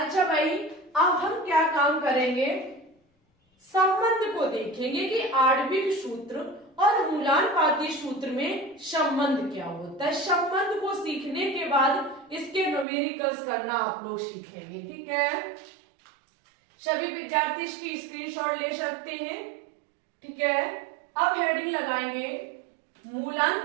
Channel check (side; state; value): left; drops out; at 12.9 s